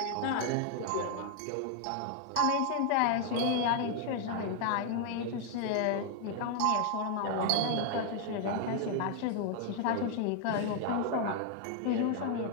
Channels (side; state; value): both; different; correlation 0.00